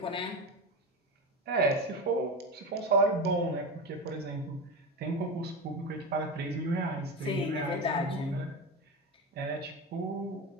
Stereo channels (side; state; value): both; normal; correlation 0.22